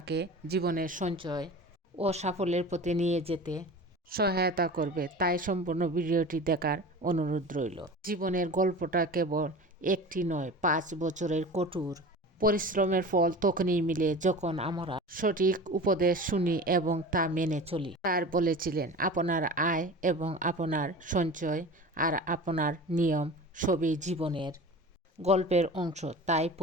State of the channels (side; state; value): both; normal; correlation 0.35